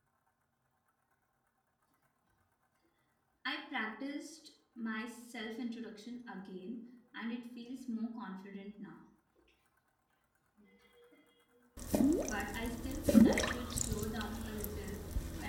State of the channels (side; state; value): both; identical; correlation 1.00